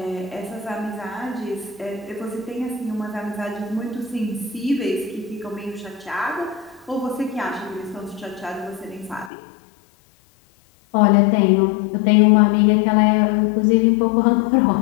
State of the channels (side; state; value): right; drops out; at 9.3 s